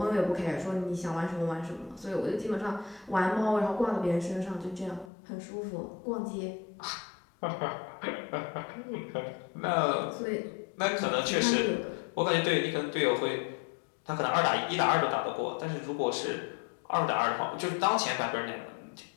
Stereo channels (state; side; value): drops out; right; at 5.1 s